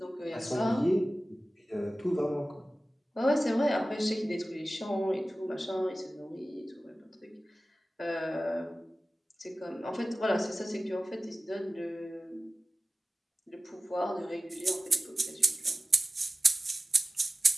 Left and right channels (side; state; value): both; normal; correlation 0.96